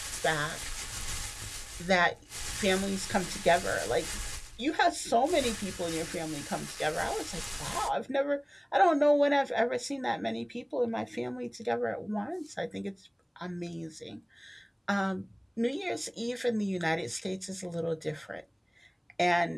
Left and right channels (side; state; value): both; identical; correlation 1.00